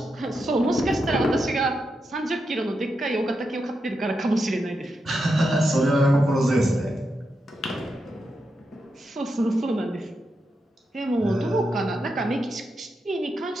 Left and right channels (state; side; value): normal; both; correlation 0.86